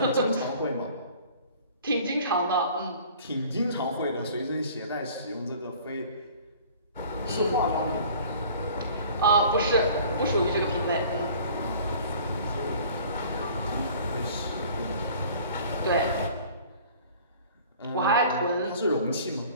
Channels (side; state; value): both; inverted; correlation -0.48